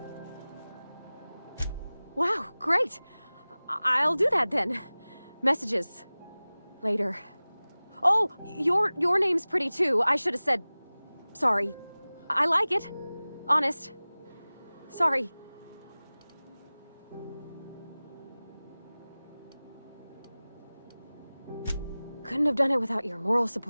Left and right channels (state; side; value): inverted; both; correlation -0.99